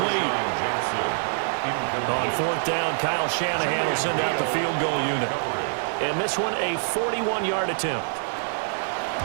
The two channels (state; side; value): silent; left; 62 dB below the other